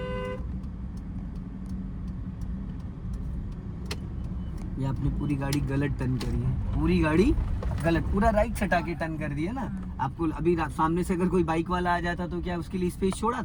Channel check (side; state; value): both; identical; correlation 1.00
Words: ये आपने पूरी गाड़ी गलत टर्न करी है, पूरी गाड़ी गलत, पूरा राइट सटा के टर्न कर दिया ना। आपको अभी सामने से अगर कोई बाइक वाला आ जाता तो क्या उसके लिए स्पेस छोड़ा